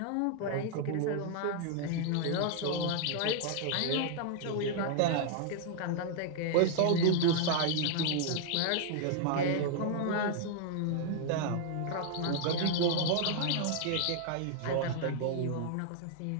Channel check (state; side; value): different; both; correlation 0.00